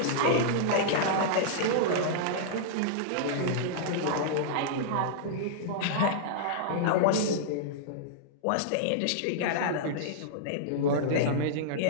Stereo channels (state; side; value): different; both; correlation -0.02